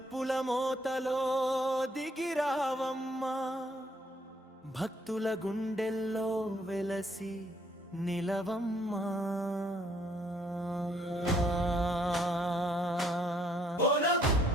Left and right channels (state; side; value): normal; both; correlation 0.67